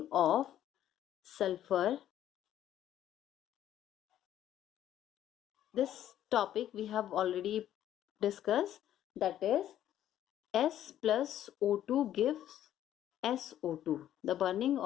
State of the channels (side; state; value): right; quieter; 11.7 dB